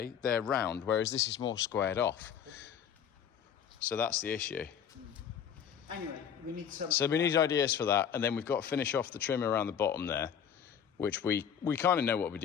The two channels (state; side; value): quieter; right; 8.3 dB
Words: they're round, whereas this is more squared off. So that's the issue. Anyway, we need some... So we need ideas for that, and then we've got to finish off the trim around the bottom there, which we kind of know what we're